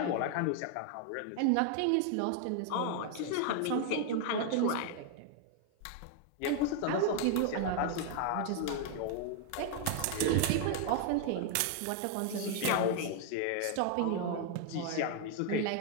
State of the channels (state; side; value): different; both; correlation 0.00